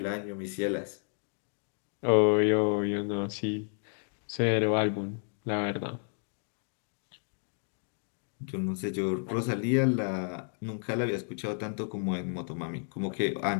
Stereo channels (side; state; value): right; silent; 57 dB below the other